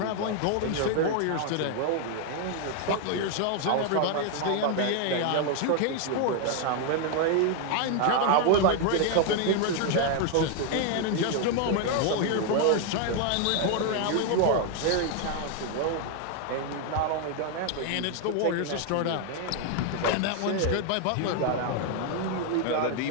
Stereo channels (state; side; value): different; both; correlation 0.00